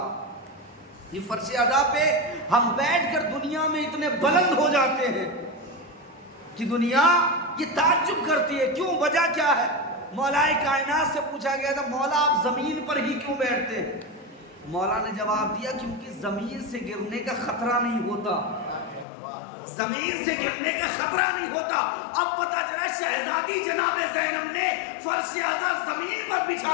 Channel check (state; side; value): drops out; right; at 19.1 s